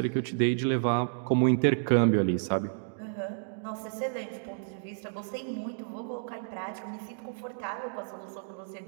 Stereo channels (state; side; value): silent; left; digital silence